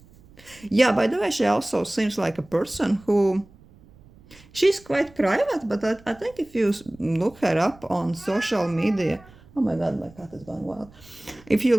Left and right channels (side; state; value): right; noise; rumble, 25 dB below the sound